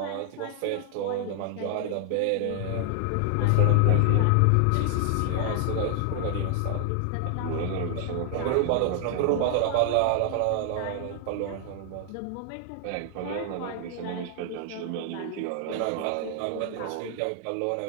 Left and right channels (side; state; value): both; different; correlation 0.00